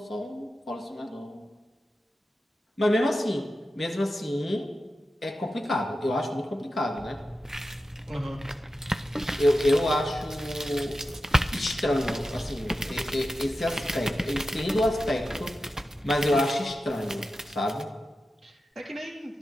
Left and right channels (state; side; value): normal; both; correlation 0.92